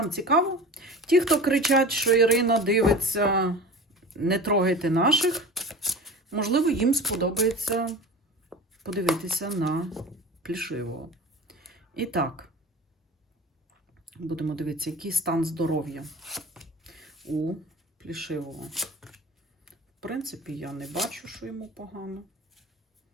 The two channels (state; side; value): normal; both; correlation 0.35